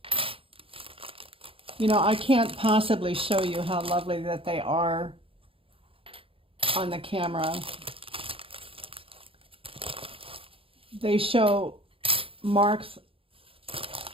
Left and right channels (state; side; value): late; left; 0.27 ms